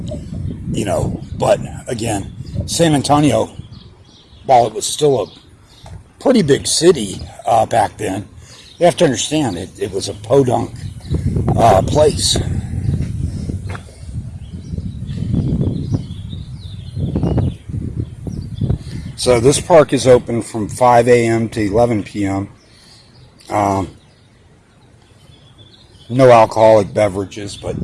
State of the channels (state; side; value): identical; both; correlation 1.00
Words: But again, San Antonio, while it was still a pretty big city back then, you have to understand it was a podunk place. So this park is open from 5 a.m. to 11 p.m. No alcoholic beverages, but